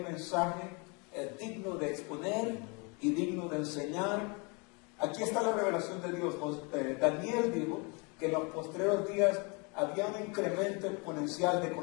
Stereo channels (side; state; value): right; quieter; 31.5 dB